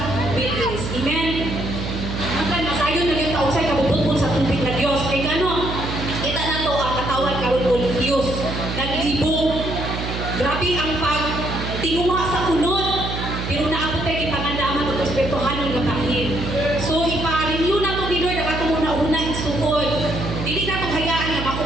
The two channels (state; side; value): noise; right; hum, 5 dB below the sound